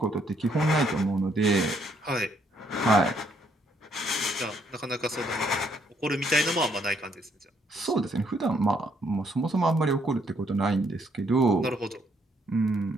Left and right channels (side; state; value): both; normal; correlation 0.71